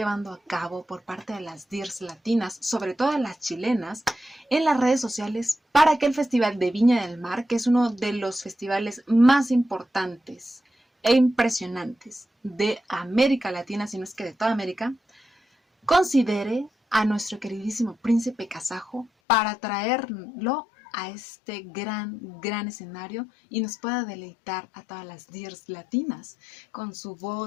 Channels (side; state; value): right; drops out; at 19.1 s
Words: a cabo por parte de las DIRs latinas, sobre todo las chilenas, en las redes sociales para que el Festival de Viña del Mar, que es uno de los festivales más importantes e impresionantes de América Latina, si no es que de toda América, considere a nuestro queridísimo príncipe kazajo para traerlo a este gran escenario y nos pueda deleitar a todas las DIRs latinas con su